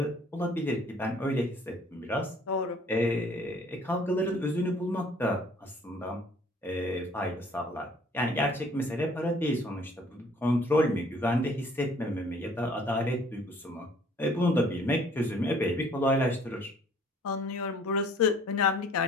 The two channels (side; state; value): both; normal; correlation 0.57